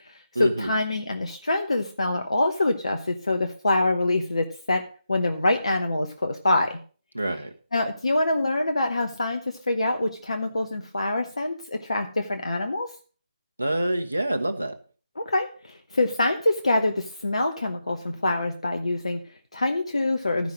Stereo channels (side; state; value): both; inverted; correlation -0.86